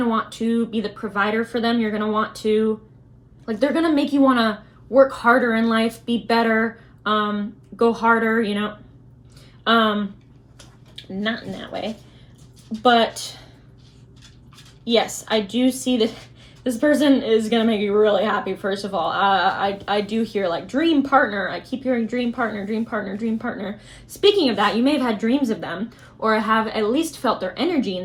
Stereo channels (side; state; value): both; identical; correlation 1.00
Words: want to be the provider for them. You're gonna want to, like they're gonna make you wanna work harder in life, be better, go harder, you know. Not in that way, but yes, I do see that this person is gonna make you really happy. First of all, I do hear like dream partner. I keep hearing dream partner, dream partner, dream partner. Speaking of that, you may have had dreams of them or have at least felt their energy